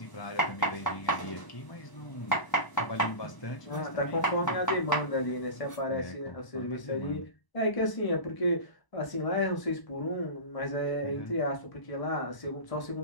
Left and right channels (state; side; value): late; right; 1.0 ms